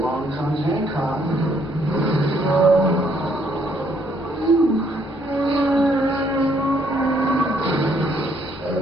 comes Hancock. I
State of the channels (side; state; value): both; normal; correlation 0.68